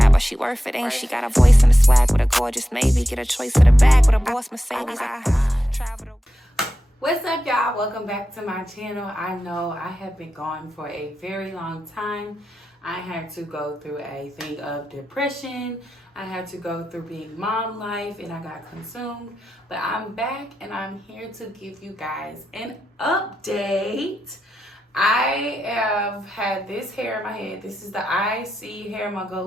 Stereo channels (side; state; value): both; normal; correlation 0.89